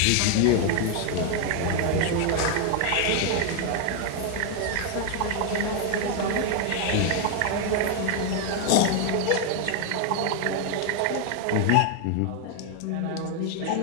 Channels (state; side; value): different; both; correlation 0.00